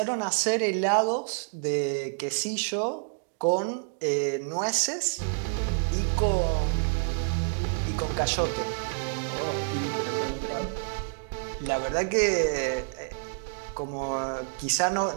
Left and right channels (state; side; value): silent; left; digital silence